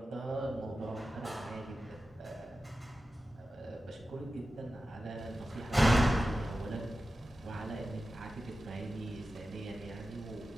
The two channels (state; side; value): normal; both; correlation 0.93